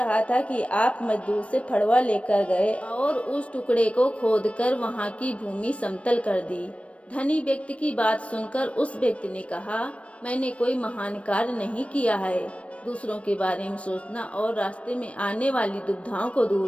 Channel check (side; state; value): right; late; 0.063 ms